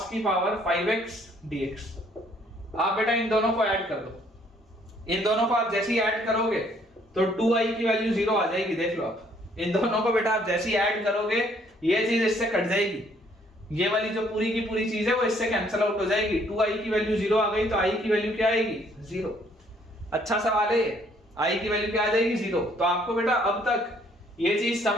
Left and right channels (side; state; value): both; normal; correlation 0.64